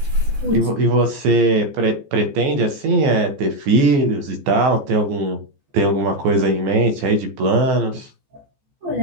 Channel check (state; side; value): late; left; 14 ms